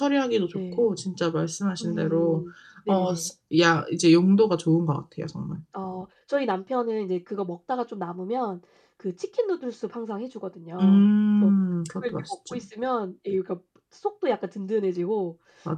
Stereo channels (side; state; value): both; identical; correlation 1.00